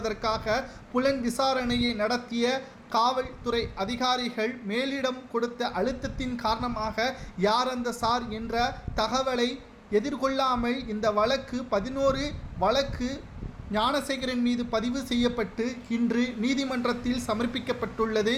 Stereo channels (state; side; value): identical; both; correlation 1.00